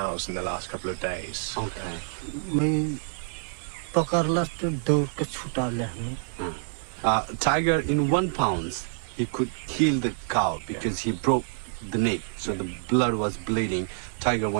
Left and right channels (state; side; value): silent; left; digital silence